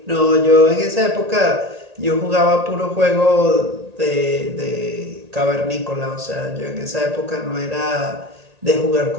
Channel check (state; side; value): late; left; 1.8 ms